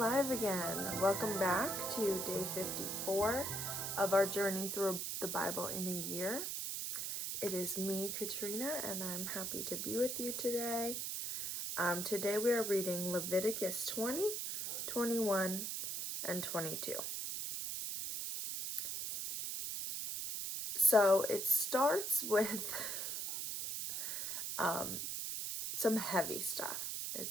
again. Welcome back to day 54 of our journey through the Bible in a year. It is me, Katrinah, and I'm happy to be with you today. Today we are reading Leviticus 20, 21, and 22. So it starts with some heavy stuff. It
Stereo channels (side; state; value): right; noise; hiss, 3 dB below the sound